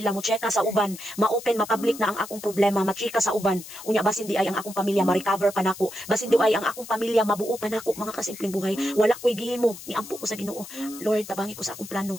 mo cheka sa uban, ma-open ma-public na ang akong problema, machika sa uban. Unya basin di ay ang akong pamilya ma-recover pa nako, basin di ay ang akong pamilya mabuo pa nako mga kasimpleng buhay. Wala ko'y gihimo, niampo ko sa Ginoo. Lord, tabangi ko sa akong plano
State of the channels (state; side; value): noise; left; hiss, 14 dB below the sound